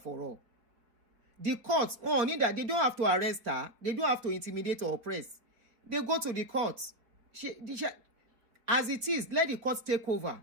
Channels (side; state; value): left; late; 4.3 ms